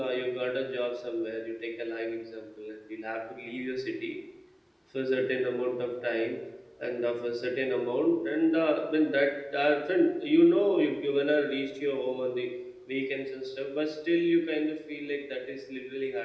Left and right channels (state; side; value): identical; both; correlation 1.00